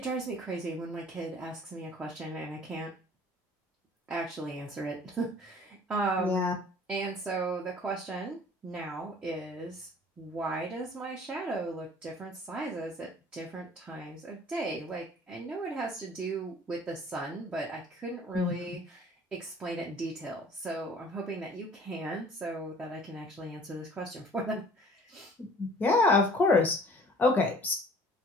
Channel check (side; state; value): both; normal; correlation 0.50